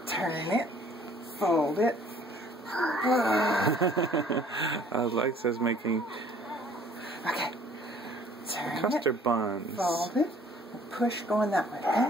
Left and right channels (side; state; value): both; normal; correlation 0.56